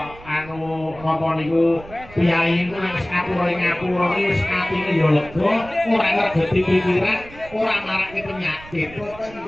anu napa niku piyai niku nek ngapura iki wis atine yo lega, ora ngregeti pikiran, ora marake penyakit. Boten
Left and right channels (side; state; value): right; noise; rumble, 19 dB below the sound